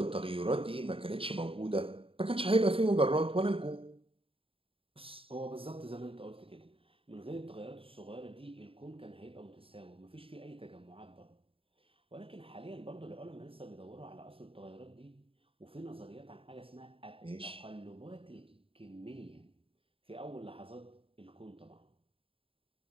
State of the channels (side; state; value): left; late; 0.27 ms